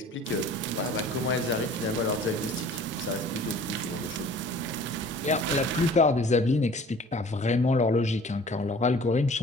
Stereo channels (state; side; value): normal; both; correlation 0.48